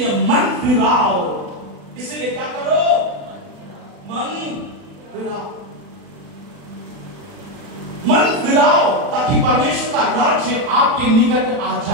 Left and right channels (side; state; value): left; late; 40 ms